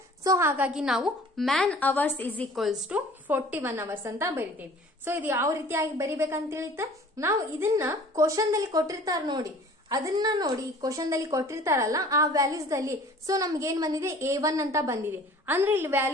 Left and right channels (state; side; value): normal; both; correlation 0.48